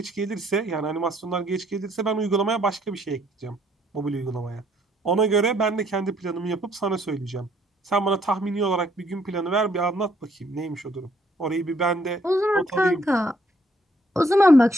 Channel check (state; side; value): normal; both; correlation 0.67